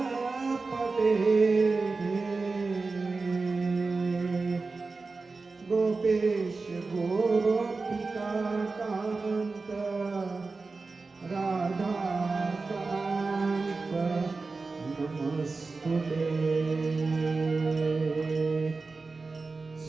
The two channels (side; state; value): left; quieter; 4.0 dB